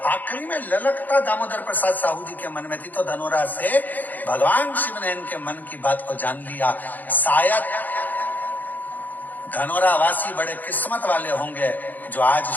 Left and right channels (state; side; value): late; right; 0.084 ms